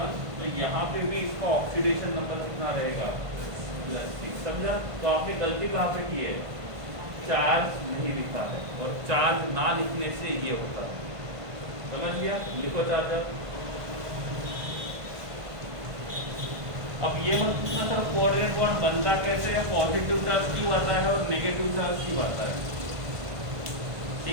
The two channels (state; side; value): late; left; 1.5 ms